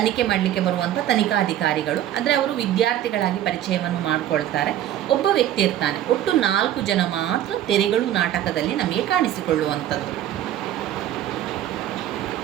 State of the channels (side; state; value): left; quieter; 12.0 dB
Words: ಮಾಡಲಿಕ್ಕೆ ಬರುವಂಥ ತನಿಖಾಧಿಕಾರಿಗಳು. ಅಂದರೆ ಅವರು ವಿದ್ಯಾರ್ಥಿಗಳಾಗಿ ಪರಿಚಯವನ್ನು ಮಾಡಿಕೊಳ್ತಾರೆ. ಒಬ್ಬ ವ್ಯಕ್ತಿ ಇರ್ತಾನೆ. ಒಟ್ಟು 4 ಜನ ಮಾತ್ರ ತೆರೆಗಳು ನಾಟಕದಲ್ಲಿ ನಮಗೆ ಕಾಣಿಸಿಕೊಳ್ಳುವಂಥದ್ದು.